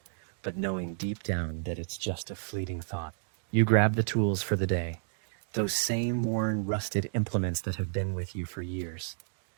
But knowing deep down that it's just a fleeting thought. You grab the tools for the day, those same worn, rusted implements that have been with you for years.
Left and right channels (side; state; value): left; silent; digital silence